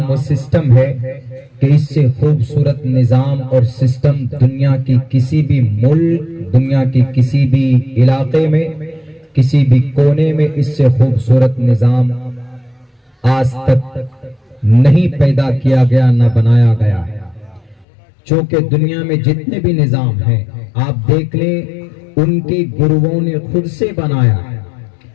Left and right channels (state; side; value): drops out; right; at 17.9 s